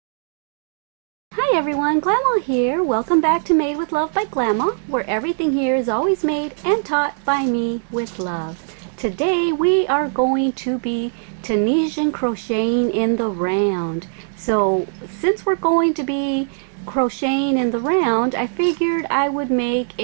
Hi everyone, Glama here. Welcome back to Made with Love by Glama, where everything here is always made and taught by me with love. Today we are going to be Tunisian crocheting in the round. So since we're going to be crocheting in the round, I figured I would make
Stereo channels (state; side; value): silent; left; digital silence